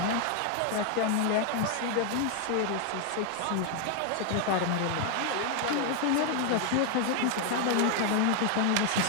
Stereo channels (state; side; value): different; both; correlation 0.00